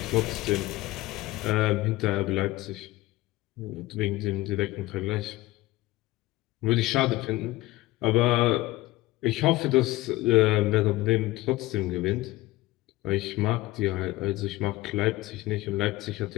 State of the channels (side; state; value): right; quieter; 18.4 dB